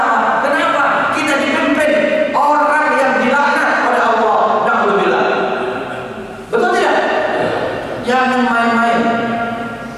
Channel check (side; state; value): both; identical; correlation 1.00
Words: Kenapa? Kita dipimpin orang yang dilaknat oleh Allah. Na'udzubillah. Betul tidak? Jangan main-main.